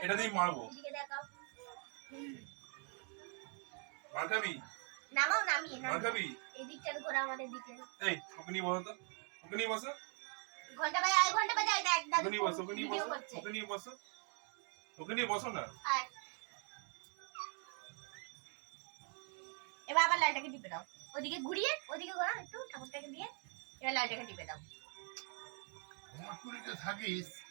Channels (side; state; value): left; quieter; 39.6 dB